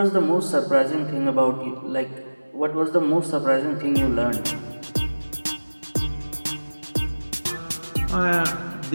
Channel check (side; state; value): both; inverted; correlation -1.00